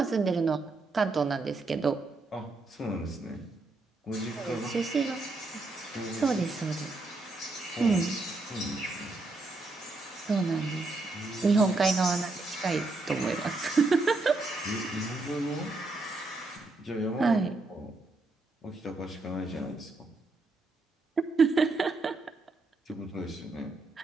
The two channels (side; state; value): left; quieter; 3.3 dB